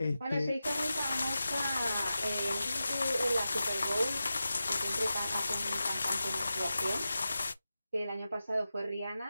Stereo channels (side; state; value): both; inverted; correlation -0.92